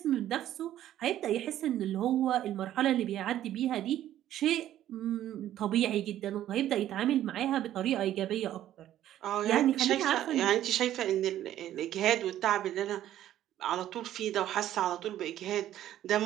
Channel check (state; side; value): quieter; left; 12.4 dB